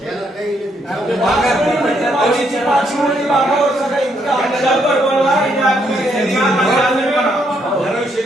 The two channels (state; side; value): normal; both; correlation 0.74